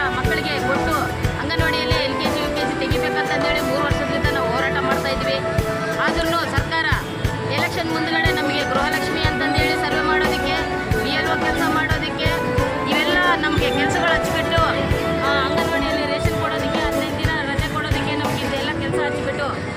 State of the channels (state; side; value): identical; both; correlation 1.00